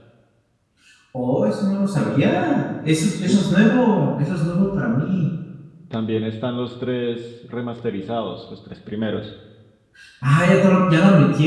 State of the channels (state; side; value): identical; both; correlation 1.00